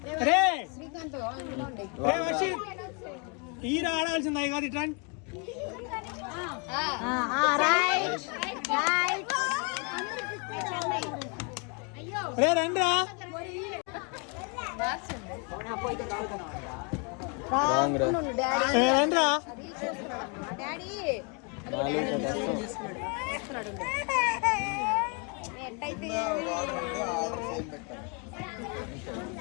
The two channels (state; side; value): quieter; right; 35.7 dB